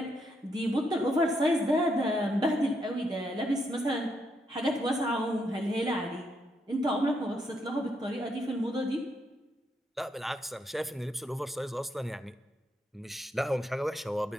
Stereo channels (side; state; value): both; normal; correlation 0.78